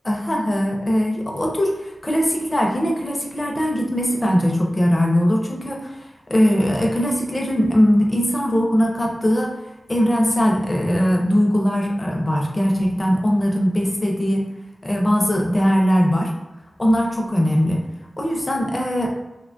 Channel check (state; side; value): normal; both; correlation 0.97